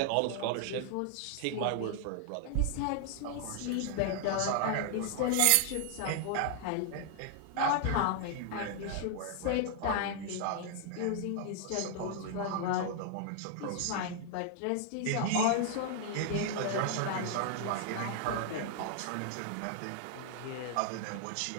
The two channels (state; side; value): different; both; correlation 0.00